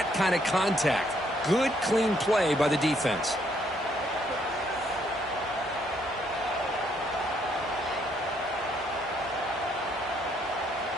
kind of contact. Good, clean play by the defense.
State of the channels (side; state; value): both; normal; correlation 0.70